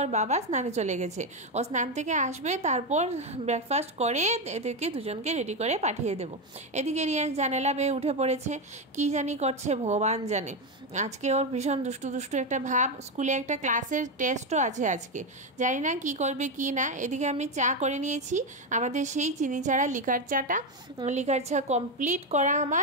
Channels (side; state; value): both; normal; correlation 0.09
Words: বাবা স্নানে চলে গেছে। ও স্নান থেকে আসবে, তারপর ব্রেকফাস্ট করে এদেরকে দুজনকে রেডি করে পাঠিয়ে দেবো। এদিকে রিয়াংশ জানালা বেয়ে উঠে পড়েছে, কি জানি করছে ভগবান জানে। আজকে ওর ভীষণ দুষ্টু দুষ্টু একটা ভাব, স্কুলে একটা ক্লাসের টেস্টও আছে আজকে, জানি না কি করবে কি না। এদিকে আমি চা করে নিয়েছি, আমাদের সেই চিনি ছাড়া লিকার চাটা, লিকার চা কমপ্লিট করা